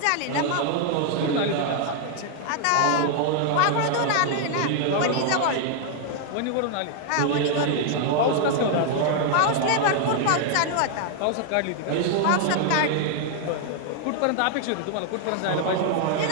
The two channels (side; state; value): both; different; correlation 0.00